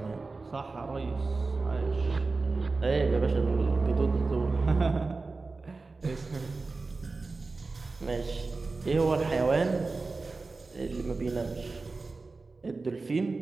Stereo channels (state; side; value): quieter; left; 3.8 dB